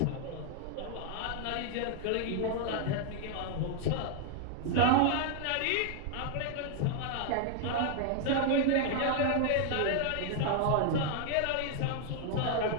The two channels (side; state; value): both; different; correlation 0.00